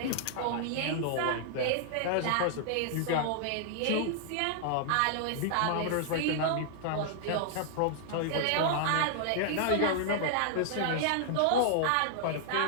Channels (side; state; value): both; different; correlation -0.01